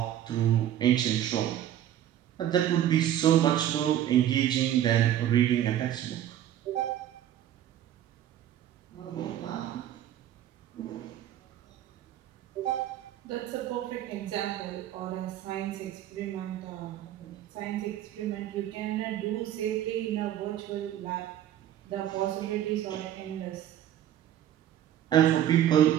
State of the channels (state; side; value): quieter; left; 11.5 dB